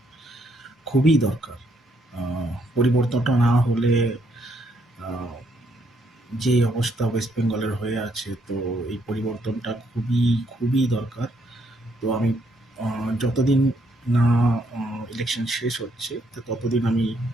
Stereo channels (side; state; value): both; normal; correlation 0.72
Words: খুবই দরকার। পরিবর্তনটা না হলে আহ, যে অবস্থা ওয়েস্ট বেঙ্গলের হয়ে আছে, তো এই পরিবর্তনটা খুবই খুবই দরকার। তো আমি যতদিন না ইলেকশন শেষ হচ্ছে, তো ততদিন আমি